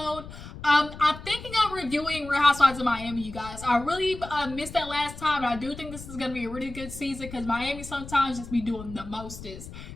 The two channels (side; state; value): left; noise; rumble, 13 dB below the sound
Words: I'm thinking of reviewing Real Housewives of Miami, you guys. I really missed that last time, and I do think this is going to be a really good season because Miami sometimes just be doing the mostest.